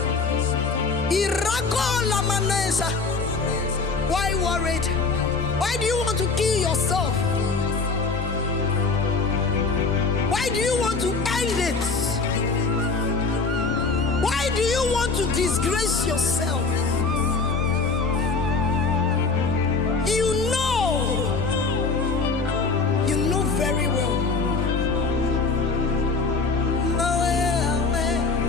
Irako Lamanesa. Why worried? Why do you want to kill yourself? Why do you want to end it? Why do you want to disgrace yourself? You know very well.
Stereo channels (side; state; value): right; quieter; 4.3 dB